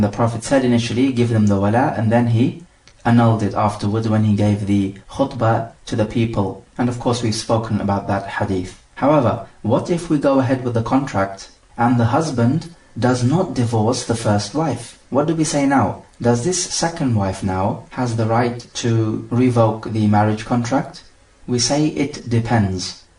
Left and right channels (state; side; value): identical; both; correlation 1.00